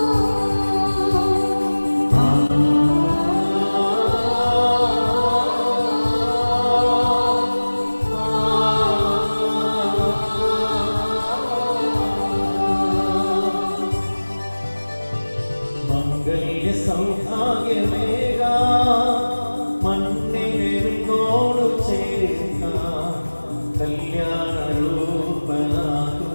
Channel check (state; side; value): inverted; both; correlation -1.00